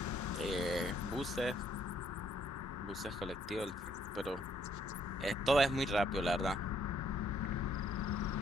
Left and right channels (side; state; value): both; normal; correlation 0.68